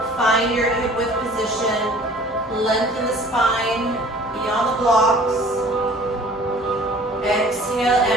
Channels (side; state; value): both; normal; correlation 0.50